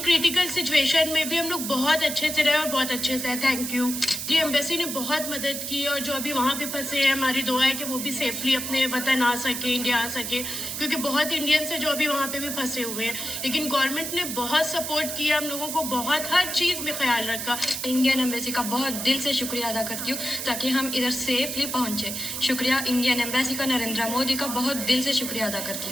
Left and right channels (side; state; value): right; noise; hiss, 5 dB below the sound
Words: सिचुएशन में भी हम लोग बहुत अच्छे से रहे और बहुत अच्छे से। थैंक यू जी, एम्बेसी ने बहुत मदद की और जो अभी वहाँ पे फंसे हैं, हमारी दुआ है कि वो भी सेफली अपने वतन आ सके, इंडिया आ सके, क्योंकि बहुत इंडियंस है जो अभी वहाँ पे भी फंसे हुए हैं। लेकिन गवर्नमेंट ने बहुत सपोर्ट किया हम लोगों को, बहुत हर चीज में ख्याल रखा। इंडियन एम्बेसी का बहुत दिल से शुक्रिया अदा करती हूँ ताकि हम इधर सेफली पहुंचे। शुक्रिया इंडियन एम्बेसी का, नरेंद्र मोदी का बहुत दिल से शुक्रिया अदा करती